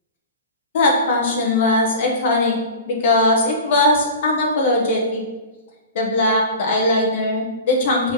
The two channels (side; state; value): both; inverted; correlation -0.34